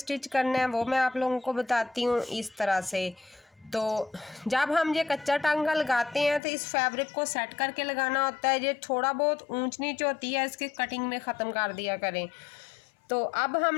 करना है वो मैं आप लोगों को बताती हूँ। इस तरह से तो जब हम ये कच्चा टांका लगाते हैं तो इस फैब्रिक को सेट करके लगाना होता है। ये थोड़ा बहुत ऊंच नीच होती है, इसकी कटिंग में ख़त्म कर दिया करें। तो अब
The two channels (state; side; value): drops out; right; at 6.4 s